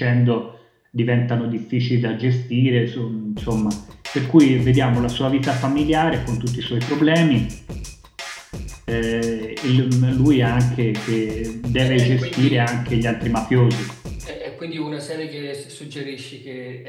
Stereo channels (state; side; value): identical; both; correlation 1.00